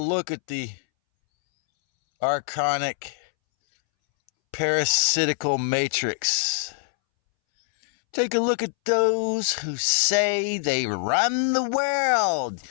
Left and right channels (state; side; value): silent; right; 63 dB below the other